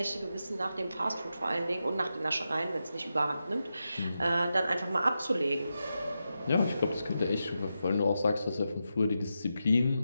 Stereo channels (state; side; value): inverted; both; correlation -0.89